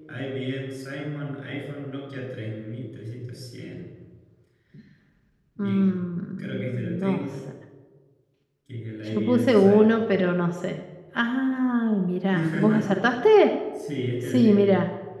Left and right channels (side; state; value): both; identical; correlation 1.00